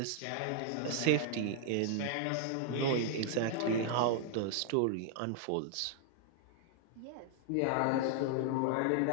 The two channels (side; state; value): both; different; correlation -0.01